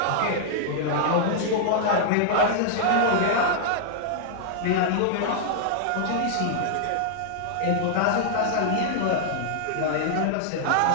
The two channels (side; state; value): both; different; correlation -0.01